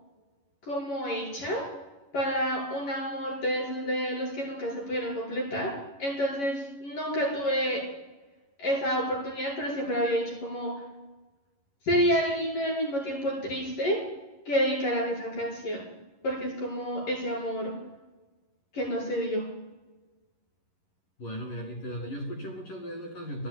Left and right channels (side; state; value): right; late; 11 ms